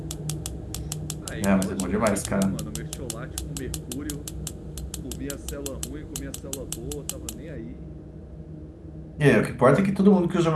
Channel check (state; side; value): identical; both; correlation 1.00